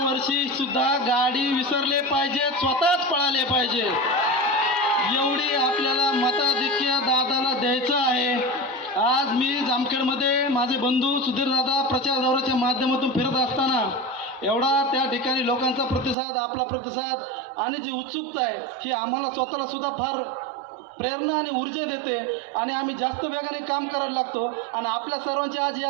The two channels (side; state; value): left; drops out; at 16.2 s